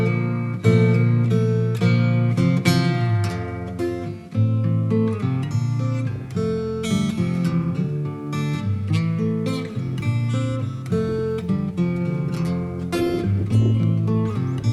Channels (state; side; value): identical; both; correlation 1.00